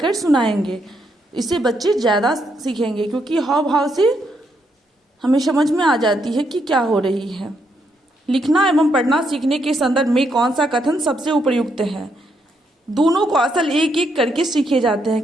सुनाएंगे। इससे बच्चे ज़्यादा सीखेंगे, क्योंकि हाव भाव से हमें समझ में आ जाती है कि क्या हो रही है। लिखना एवं पढ़ना सीखने के संदर्भ में कौन सा कथन सबसे उपयुक्त है? दोनों को असल एक एक करके सीखे जाते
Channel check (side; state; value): both; normal; correlation 0.77